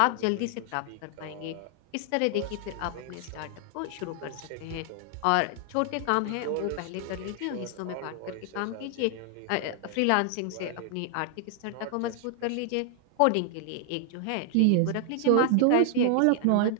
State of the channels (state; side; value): different; both; correlation 0.00